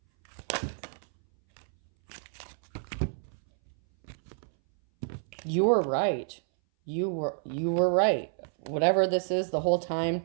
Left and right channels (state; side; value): silent; left; 58 dB below the other